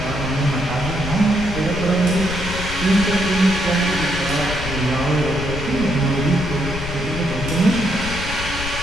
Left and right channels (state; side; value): noise; left; rumble, 7 dB below the sound